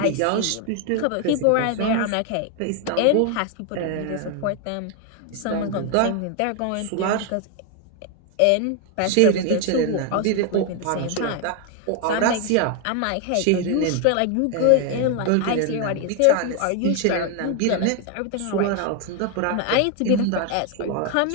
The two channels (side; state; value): both; different; correlation 0.01